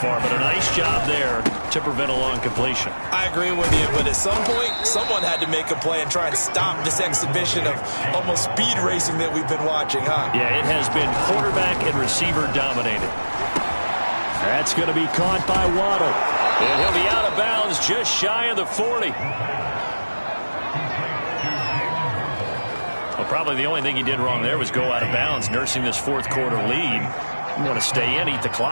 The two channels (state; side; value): inverted; both; correlation -1.00